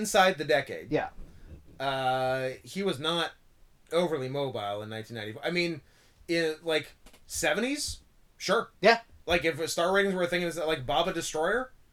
the decade. Yeah. He was not overly mobile in 1994. I mean, in like 70s, sure. Yeah. Like if star ratings were a thing, is that like Baba Destroyer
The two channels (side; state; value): both; identical; correlation 1.00